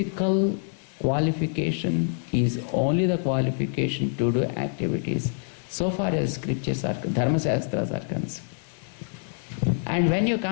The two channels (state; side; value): silent; right; digital silence